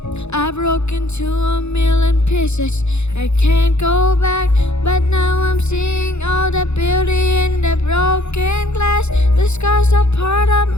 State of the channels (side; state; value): right; late; 0.81 ms